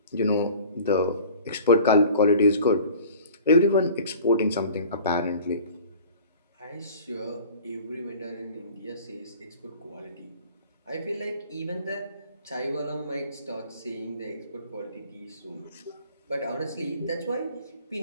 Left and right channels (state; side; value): inverted; both; correlation -0.45